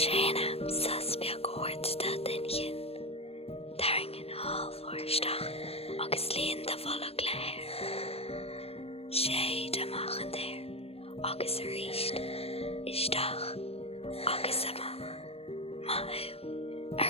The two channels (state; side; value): late; right; 0.29 ms